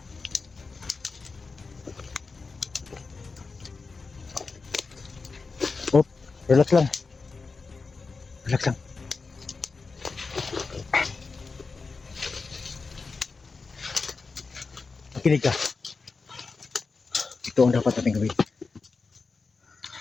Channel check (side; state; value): right; quieter; 4.3 dB